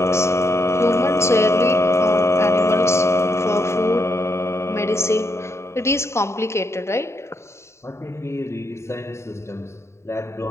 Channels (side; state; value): right; late; 0.13 ms